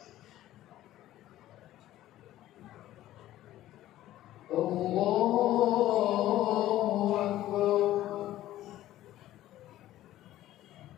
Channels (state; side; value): quieter; right; 14.2 dB